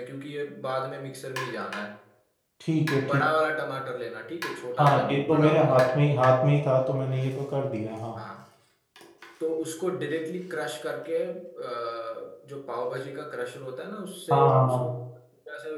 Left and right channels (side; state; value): both; identical; correlation 1.00